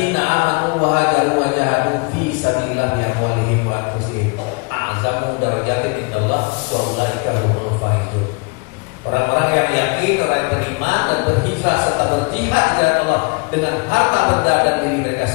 amanu wa hajaru wa jahadu fi sabilillah bi amwalihim wa anfusihim a'zamu darajatin indallah wa ulaika humul faizun. Orang-orang yang yakin, orang yang beriman dan berhijrah serta berjihad di jalan Allah dengan harta benda dan diri mereka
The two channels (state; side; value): quieter; right; 32.5 dB